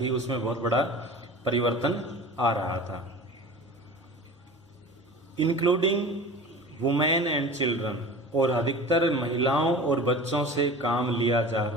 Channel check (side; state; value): both; normal; correlation 0.37